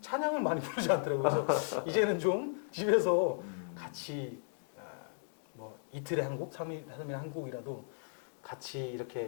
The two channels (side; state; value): right; silent; digital silence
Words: 찬양을 많이 부르지 않더라고요. 그래서 이제는 좀 집에서 같이 뭐 이틀에 한 곡, 3일에 한 곡이라도 같이